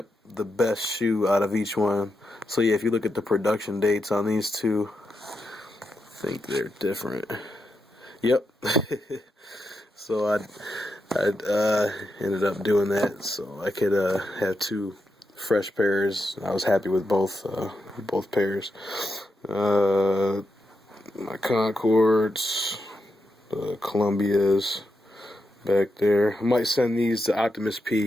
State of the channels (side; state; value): both; normal; correlation 0.85